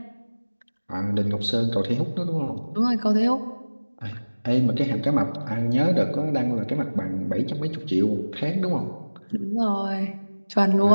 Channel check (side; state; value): both; inverted; correlation -1.00